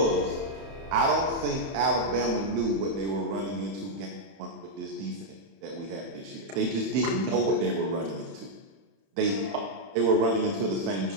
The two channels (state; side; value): late; left; 31 ms